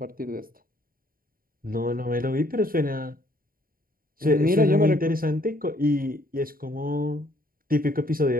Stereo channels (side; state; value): left; late; 0.42 ms